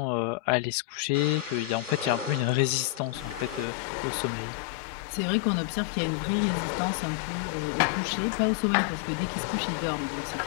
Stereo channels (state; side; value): drops out; right; at 3.7 s